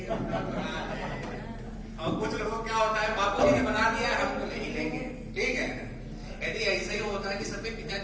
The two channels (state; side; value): identical; both; correlation 1.00